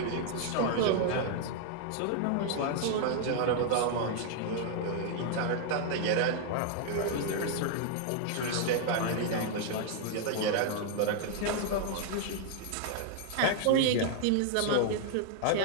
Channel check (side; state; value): both; different; correlation 0.00